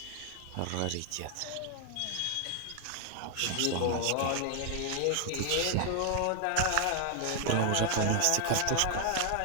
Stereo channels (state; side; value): different; both; correlation 0.00